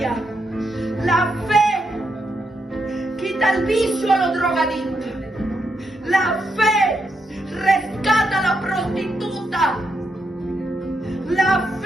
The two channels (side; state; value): both; normal; correlation 0.82